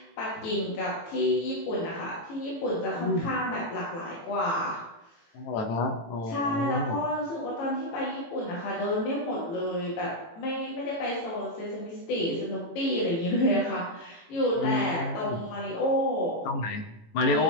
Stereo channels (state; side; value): late; right; 18 ms